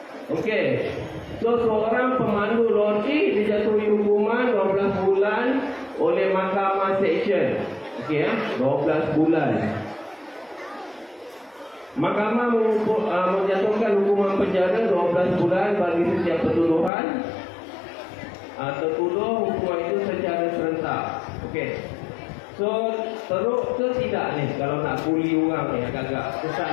Okey. So seorang pemandu lori dijatuhi hukuman 12 bulan oleh Mahkamah Seksyen. Okey ya, 12 bulan. Mahkamah menjatuhkan hukuman penjara 12 bulan bagi setiap pertuduhan. Tertuduh hukuman itu secara serentak. Okey. So teruk ke tidak ni kalau nak buli orang ni agak-agak kesan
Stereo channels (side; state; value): right; drops out; at 16.9 s